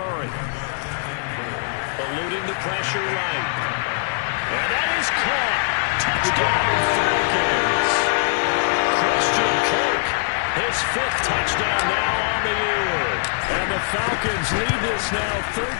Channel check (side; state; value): right; silent; digital silence